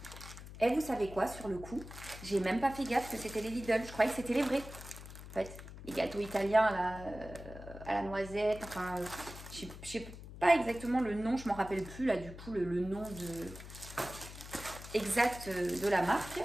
Et vous savez quoi, sur le coup, j'ai même pas fait gaffe que c'était les Lidl. Je croyais que c'était les vrais. En fait, les gâteaux italiens à la noisette, enfin, je sais pas exactement le nom, je m'en rappelle plus là du coup le nom exact de la marque,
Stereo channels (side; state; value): left; noise; hum, 13 dB below the sound